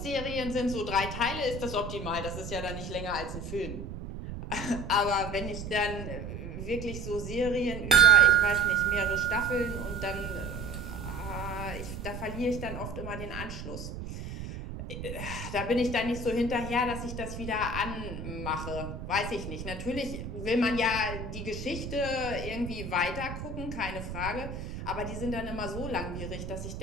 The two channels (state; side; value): noise; right; rumble, 8 dB below the sound